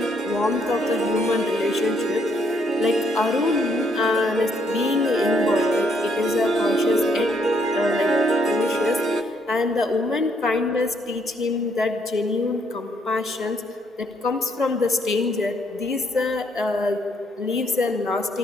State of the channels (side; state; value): both; normal; correlation 0.70